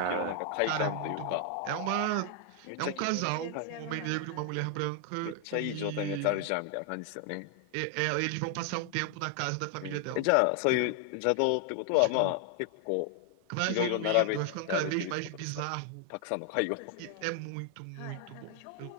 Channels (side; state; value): both; different; correlation 0.00